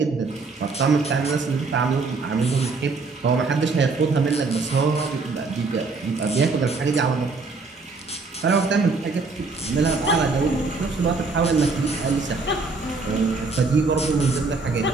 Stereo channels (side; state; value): left; quieter; 4.0 dB